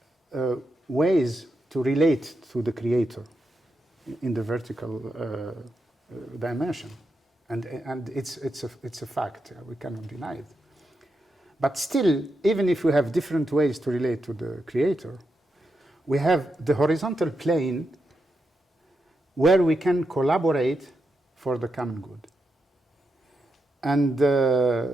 ways to relate to the Creator in the vertical dimension, and it's a fact. We cannot deny it. But still, even if we have different ways to relate to the Creator, we have the horizontal plane where we can collaborate for the common good. And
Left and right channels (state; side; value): normal; both; correlation 0.85